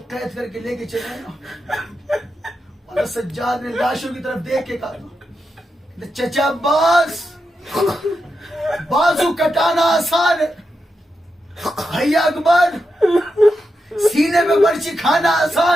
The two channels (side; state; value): both; normal; correlation 0.87